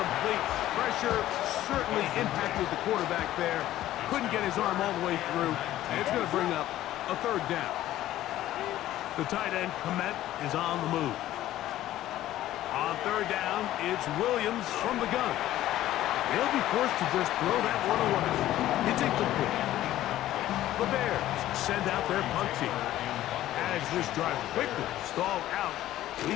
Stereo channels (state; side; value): quieter; right; 14.0 dB